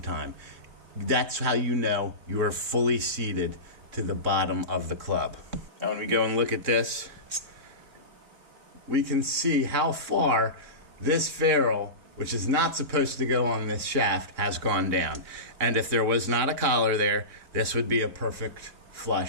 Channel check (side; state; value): left; late; 3.7 ms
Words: That's how you know you are fully seated to the bottom of the club. Now when we go and look at this, we can see how far this ferrule, which is not supposed to go on this shaft, has gone down. And if there was not a collar there, this would be a perfect